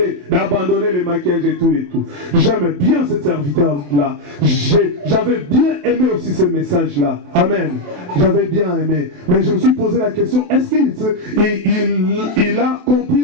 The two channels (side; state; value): left; late; 28 ms